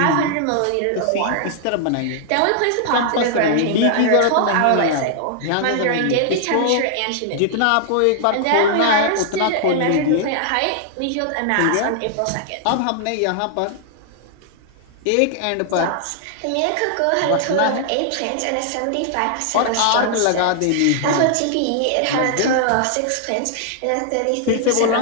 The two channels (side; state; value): both; different; correlation 0.00